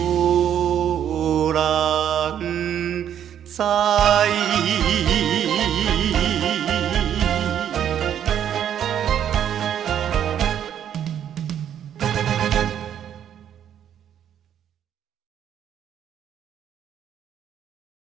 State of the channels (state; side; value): quieter; left; 9.7 dB